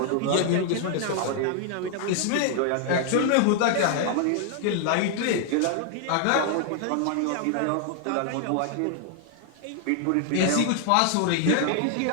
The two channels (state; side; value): different; both; correlation 0.00